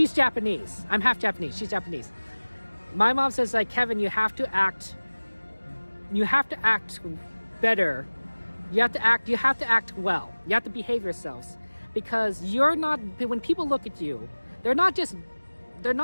Japanese. I'm half Japanese. She's Japanese. My mom says, like, Kevin, you have to act better. You have to act well. You have to behave yourselves. Because you're not, when people look at you, they're not just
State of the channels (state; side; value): inverted; both; correlation -1.00